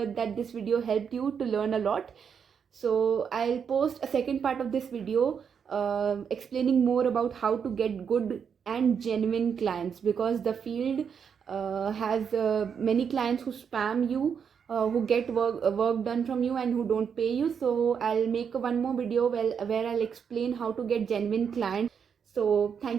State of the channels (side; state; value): left; quieter; 7.0 dB